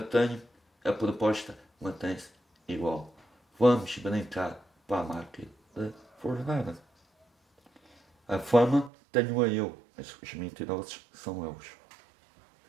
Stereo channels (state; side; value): drops out; left; at 8.9 s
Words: tenho, a proposta mantém-se igual. Vamos brincar para a máquina da verdade. A fama tenho-a eu, mas os mentirosos são eles.